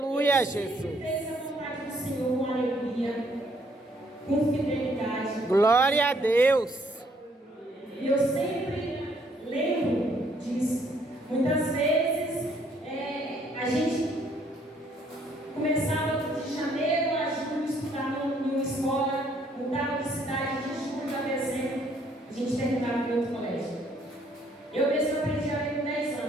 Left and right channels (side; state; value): both; normal; correlation 0.66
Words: Ele Jesus. sempre fez a vontade do Senhor com alegria, com fidelidade. Glória a Deus. E eu sempre lembro disso. Muitas vezes a gente começava de janeiro a julho estudar em uma escola, mudava de cidade de julho a dezembro, a gente terminava em outro colégio. Eu mesmo aprendi a ler com 10